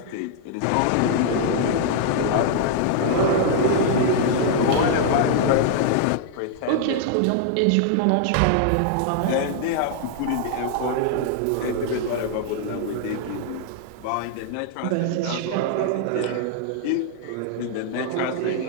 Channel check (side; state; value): both; different; correlation -0.01